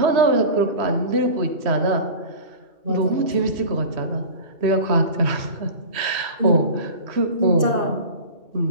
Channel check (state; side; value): late; left; 3.1 ms